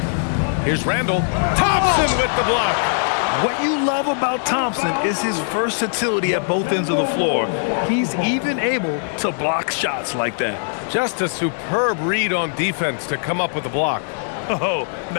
Here's Randall. Thompson with the block. What you love about Thompson is his versatility at both ends of the floor. He's even able to block shots like that. Just a superb read on defense to come up with the block. Oh,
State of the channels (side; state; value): right; silent; 65 dB below the other